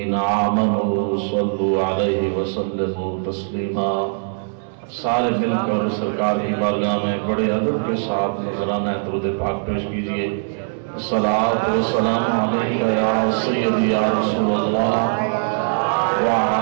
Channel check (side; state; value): left; silent; digital silence